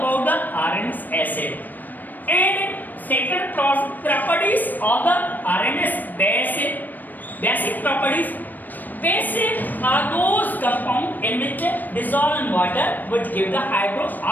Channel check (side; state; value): right; late; 0.088 ms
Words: the RNS acid. And second properties of the RNS base, basic properties. Basic are those compounds in which dissolve in water which give the